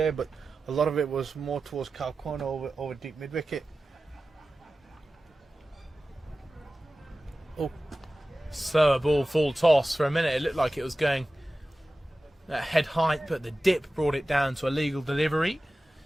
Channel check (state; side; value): normal; both; correlation 0.95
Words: but a lot of it was more towards cow corner over deep mid wicket. Oh, slower ball, full toss. For a minute, it looked like it was going at head height, but the dip brought it down to a legal delivery.